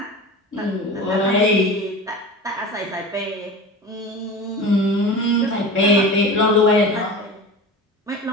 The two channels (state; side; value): normal; both; correlation 0.32